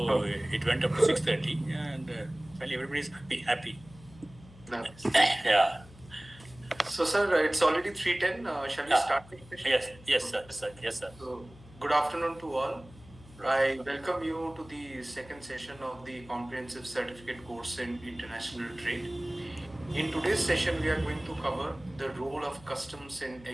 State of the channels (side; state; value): left; noise; hum, 21 dB below the sound